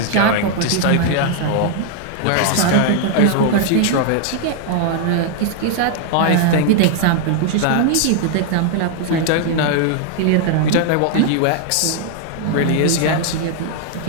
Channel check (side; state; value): both; different; correlation 0.00